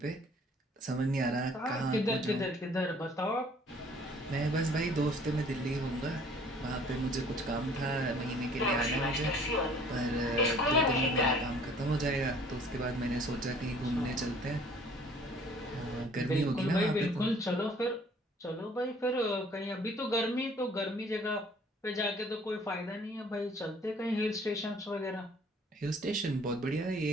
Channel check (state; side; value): normal; both; correlation 0.55